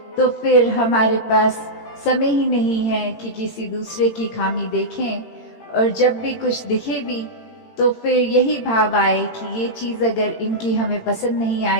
तो फिर हमारे पास समय ही नहीं है कि किसी दूसरे की खामी देखें। और जब भी कुछ दिखे भी तो फिर यही भाव आए कि ये चीज़ अगर इनकी हमें पसंद नहीं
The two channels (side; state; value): right; late; 18 ms